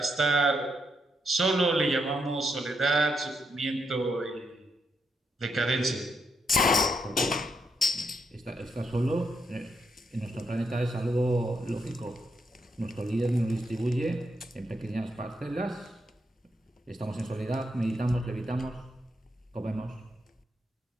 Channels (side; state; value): both; normal; correlation 0.79